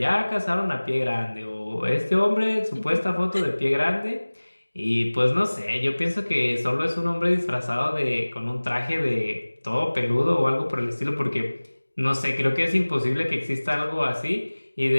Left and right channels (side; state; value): both; inverted; correlation -1.00